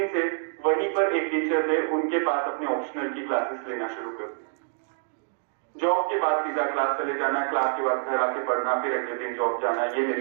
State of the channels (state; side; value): silent; left; digital silence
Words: से वहीं पर एक टीचर थे, उनके पास अपने ऑप्शनल की क्लासेस लेना शुरू कर दी। जॉब के बाद सीधा क्लास चले जाना, क्लास के बाद घर आके पढ़ना, फिर अगले दिन जॉब जाना, ये